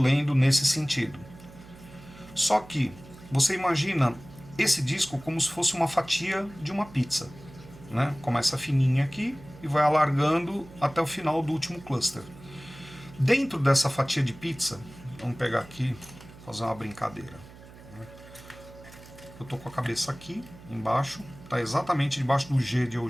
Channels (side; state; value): right; noise; hum, 19 dB below the sound